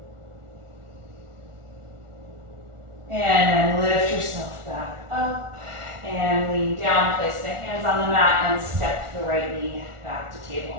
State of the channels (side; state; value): left; late; 1.4 ms